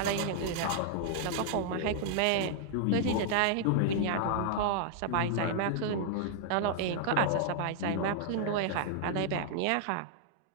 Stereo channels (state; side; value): different; both; correlation -0.01